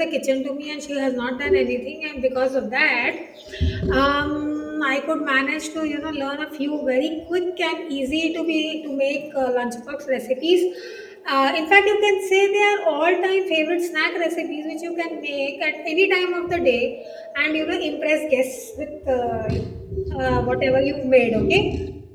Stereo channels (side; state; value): both; identical; correlation 1.00